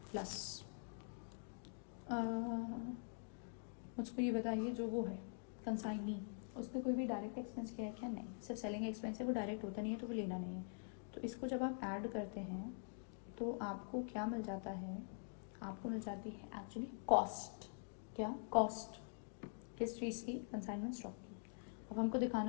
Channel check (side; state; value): right; silent; digital silence